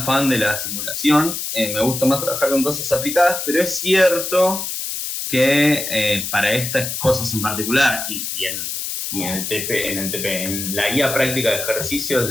fan de la simulación, me gusta más trabajar con cosas aplicadas, pero es cierto que para estas cosas en particular y en la guía práctica de ejercicios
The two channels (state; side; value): noise; left; hiss, 4 dB below the sound